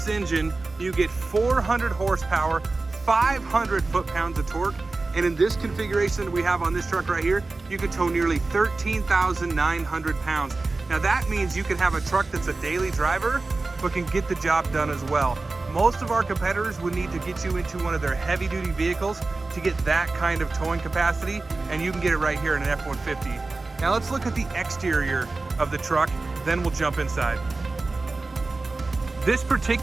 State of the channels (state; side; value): quieter; left; 3.5 dB